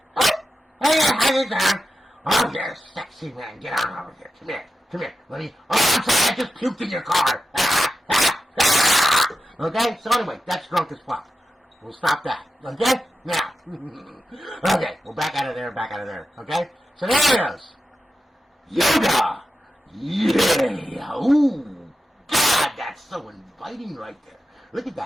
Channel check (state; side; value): normal; both; correlation 0.91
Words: down. Oh, you're a sexy man. Get on over here. Come here. Let me... Oh, I'm sorry, I just puked in your car. Okay, so anyway, that's drunk as fuck. We'll stop that. Okay? Now. Okay, we're back out of there, okay? So there it is. Yoga! Yeah! Ooh! God, that's so inviting right there. Look at